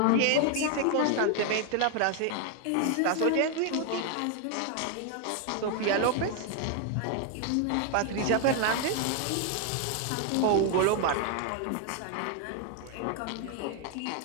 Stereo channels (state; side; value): different; both; correlation 0.00